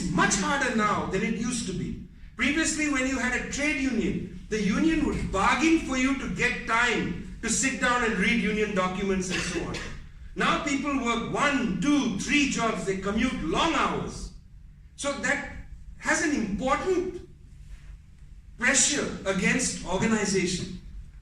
much harder now than it used to be. Previously, when you had a trade union, the union would bargain for you to get time to sit down and read union documents and so on. Now people work 1, 2, 3 jobs, they commute long hours. So that has an important pressure against organization,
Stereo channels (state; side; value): identical; both; correlation 1.00